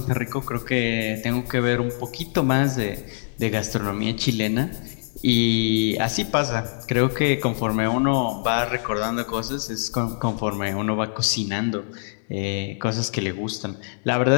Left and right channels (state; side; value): silent; right; 63 dB below the other